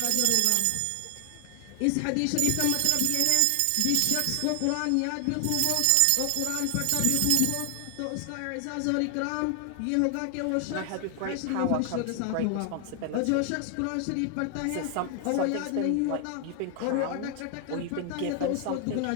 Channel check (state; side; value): different; both; correlation 0.00